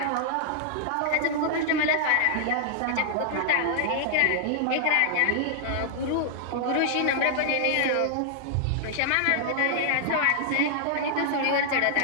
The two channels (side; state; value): both; different; correlation -0.01